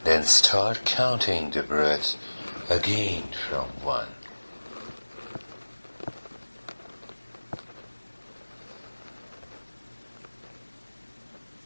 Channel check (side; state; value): both; inverted; correlation -1.00